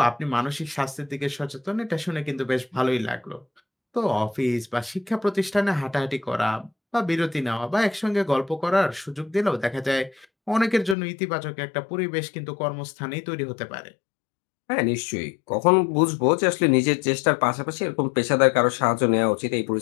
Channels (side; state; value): right; drops out; at 11.0 s